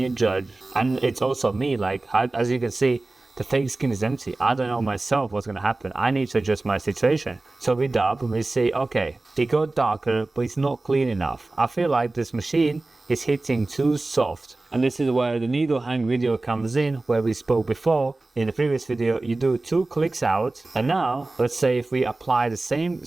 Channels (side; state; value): left; quieter; 3.1 dB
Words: judge. And it's also me, like, as you can see, the fake skin is empty. I don't know myself what's gonna happen. I need to adjust my situation. So we dab and we say, okay, they go darker, but it's not clean enough. I feel like this machine is hitting too soft. And this is where the needle hang video comes in, where we spoke before. In the previous video, you do 2 clicks out. And now, let's say if we apply the same